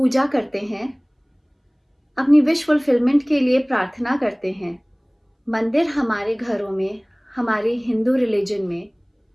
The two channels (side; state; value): both; identical; correlation 1.00